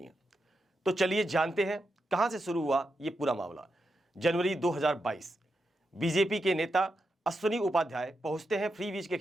हैं। तो चलिए जानते हैं कहां से शुरू हुआ ये पूरा मामला। जनवरी 2022 बीजेपी के नेता अश्विनी उपाध्याय पहुंचते हैं फ्री वीज के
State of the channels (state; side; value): normal; both; correlation 0.86